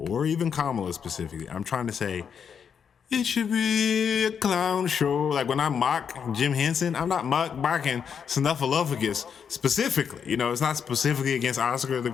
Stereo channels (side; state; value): right; quieter; 7.2 dB